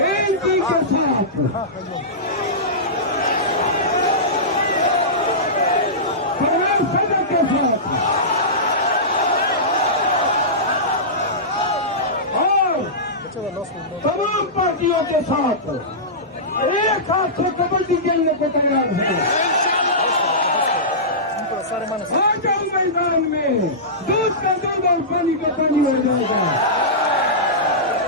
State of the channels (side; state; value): both; normal; correlation -0.17